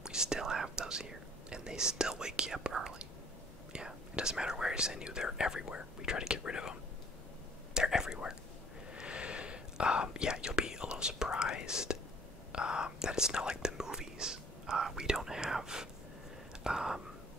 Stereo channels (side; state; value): both; normal; correlation 0.55